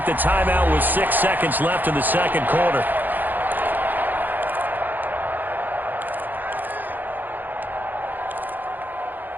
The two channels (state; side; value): late; left; 0.086 ms